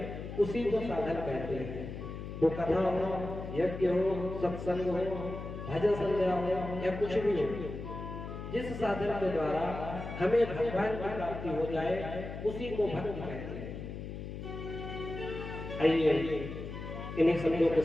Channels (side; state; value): left; noise; hum, 8 dB below the sound